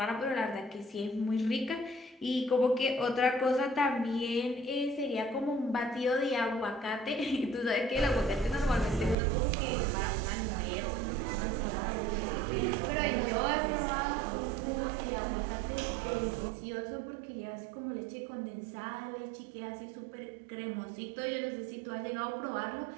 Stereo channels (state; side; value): drops out; left; at 9.2 s